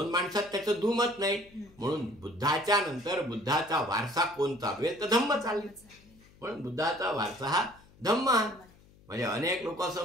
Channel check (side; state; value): left; noise; hum, 26 dB below the sound